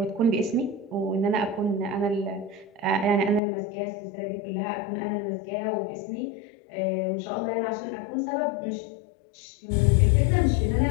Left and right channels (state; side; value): drops out; right; at 3.4 s